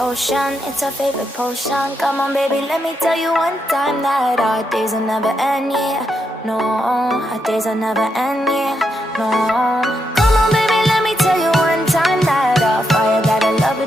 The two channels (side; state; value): both; normal; correlation 0.82